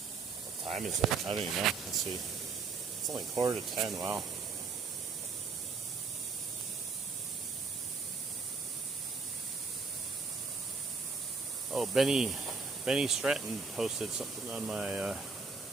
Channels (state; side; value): quieter; left; 4.7 dB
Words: time is it? I don't even know. Let's see. It's only 9:45. Wow. Oh, Benny Stratton posted something on my